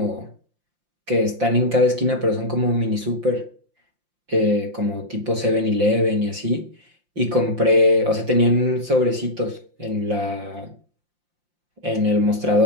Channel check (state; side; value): late; left; 5.7 ms